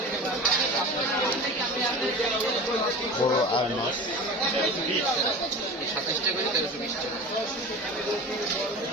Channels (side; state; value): both; normal; correlation 0.34